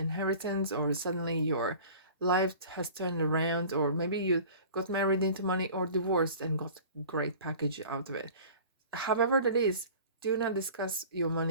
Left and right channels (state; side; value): inverted; both; correlation -0.42